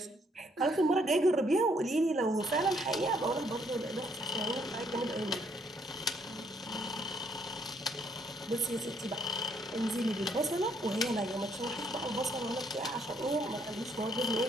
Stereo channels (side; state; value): both; normal; correlation 0.69